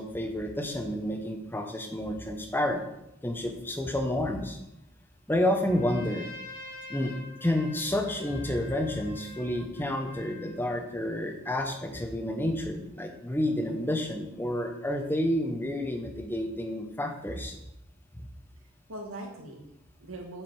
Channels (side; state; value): both; normal; correlation 0.73